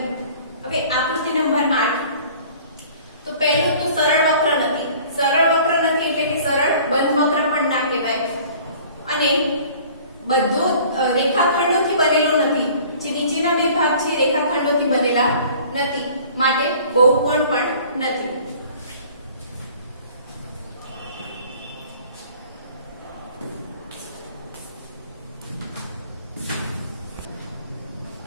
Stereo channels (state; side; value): inverted; both; correlation -0.50